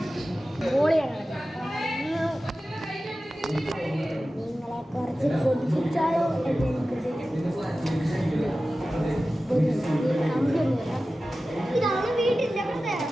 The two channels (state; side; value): normal; both; correlation 0.95